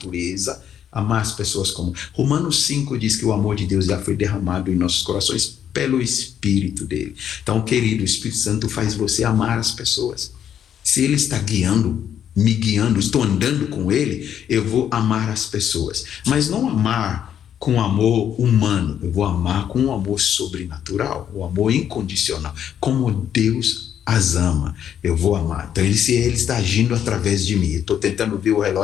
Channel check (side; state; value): right; quieter; 9.4 dB